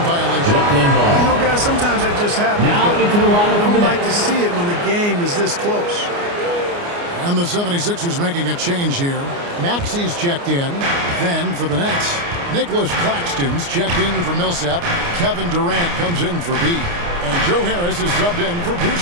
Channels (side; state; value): left; late; 29 ms